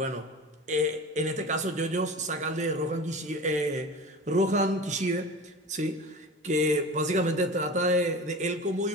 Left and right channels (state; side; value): normal; both; correlation 0.33